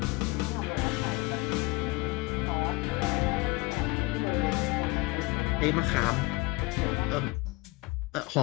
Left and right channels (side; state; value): right; quieter; 23.7 dB